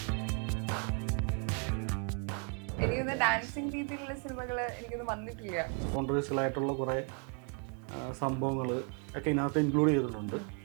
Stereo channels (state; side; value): quieter; left; 37.5 dB